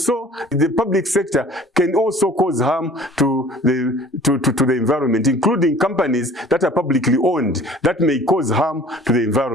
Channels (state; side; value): normal; both; correlation 0.48